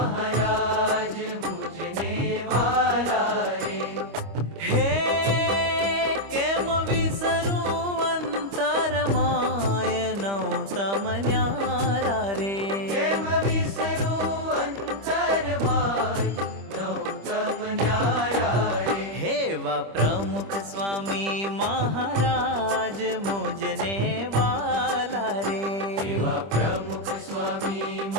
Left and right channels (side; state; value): left; late; 25 ms